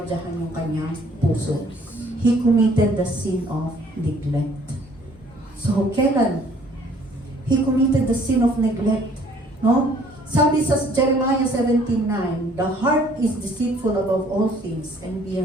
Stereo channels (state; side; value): normal; both; correlation 0.59